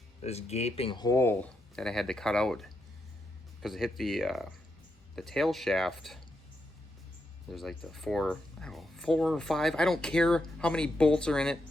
gaping hole that I had to cut out because it hit the tail shaft. There's like the four or five, I don't care how many bolts are in it.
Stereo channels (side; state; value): both; normal; correlation 0.83